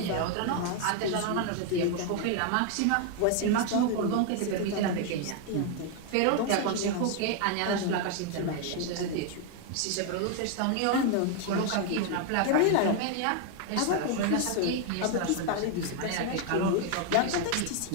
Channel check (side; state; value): both; different; correlation 0.00